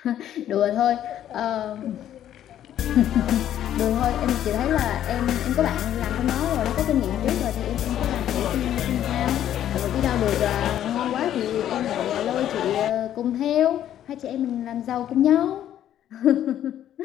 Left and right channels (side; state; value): right; quieter; 11.2 dB